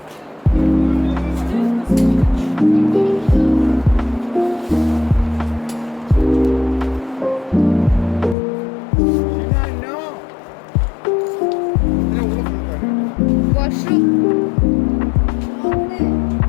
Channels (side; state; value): right; drops out; at 8.3 s